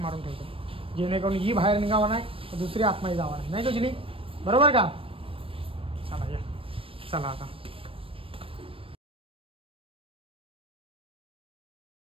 मारून ठेवतो जेणेकरून ही बाहेर निघावा नाही दुसरी आतमध्ये जावा नाही का जुली? बरोबर का? चला या चला आता.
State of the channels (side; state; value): left; late; 0.26 ms